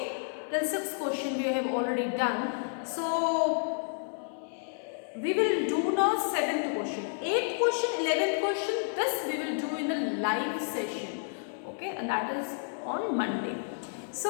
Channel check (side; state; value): right; silent; digital silence